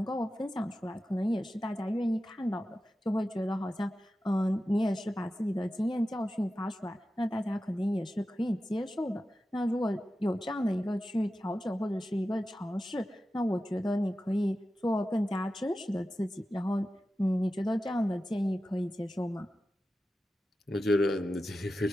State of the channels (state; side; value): normal; both; correlation 0.93